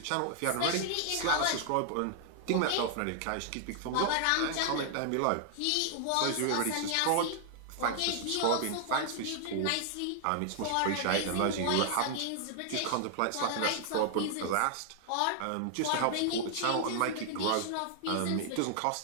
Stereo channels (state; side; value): different; both; correlation 0.00